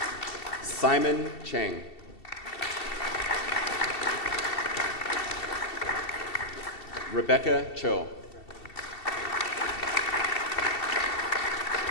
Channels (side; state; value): right; late; 2.7 ms